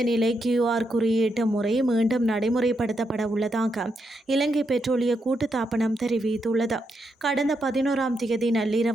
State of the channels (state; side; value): normal; both; correlation 0.82